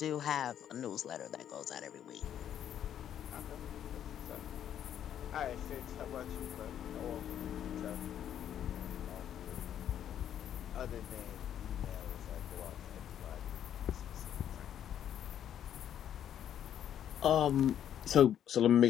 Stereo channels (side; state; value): right; quieter; 10.0 dB